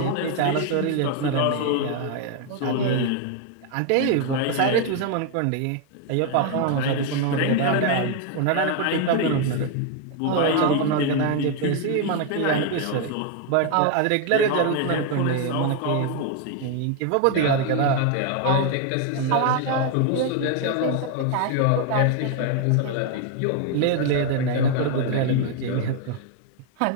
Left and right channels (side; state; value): both; different; correlation 0.01